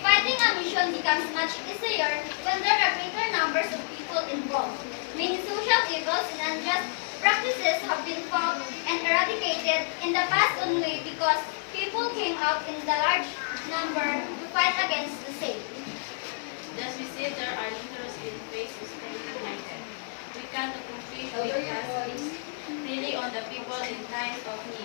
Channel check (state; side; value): silent; right; 59 dB below the other